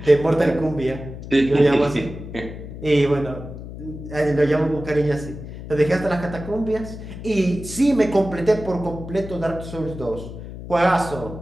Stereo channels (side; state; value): left; noise; hum, 11 dB below the sound